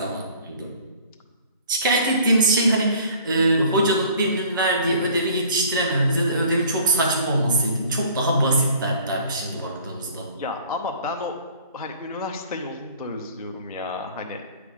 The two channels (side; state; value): both; inverted; correlation -0.51